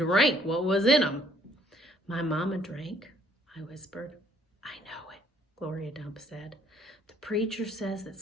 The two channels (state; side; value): normal; both; correlation 0.64